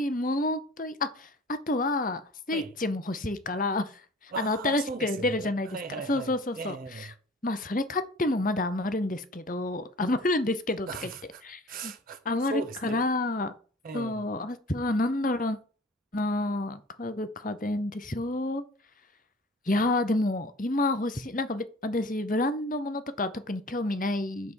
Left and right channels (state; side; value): normal; both; correlation 0.45